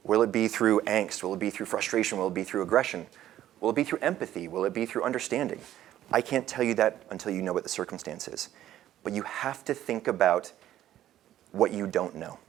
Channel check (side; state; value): left; quieter; 12.6 dB